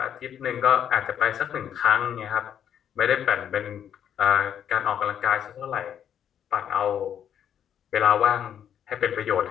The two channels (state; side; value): quieter; right; 9.3 dB